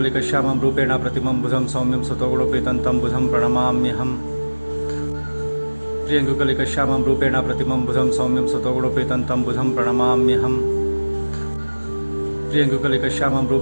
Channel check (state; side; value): inverted; both; correlation -1.00